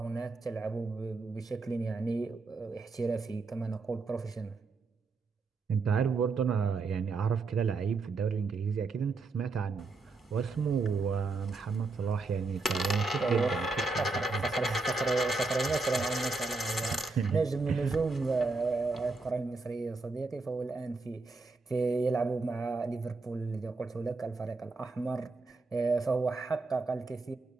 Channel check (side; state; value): left; quieter; 3.8 dB